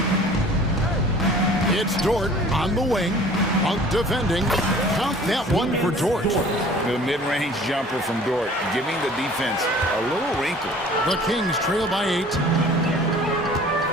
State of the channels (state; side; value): normal; both; correlation 0.48